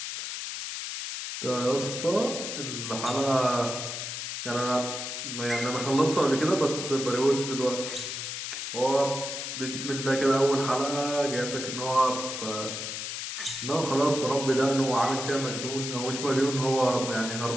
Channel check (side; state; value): left; noise; hiss, 5 dB below the sound